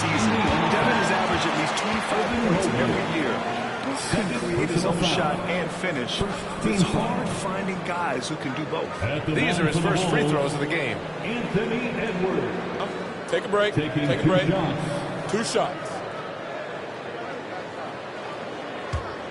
Devin has averaged at least 25 points every year. Can create his own shot and finish. It's hard finding guys who can do both. These are his first free throws of the game. Anthony Edwards. Take a break. Take a break. 2 shots.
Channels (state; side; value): identical; both; correlation 1.00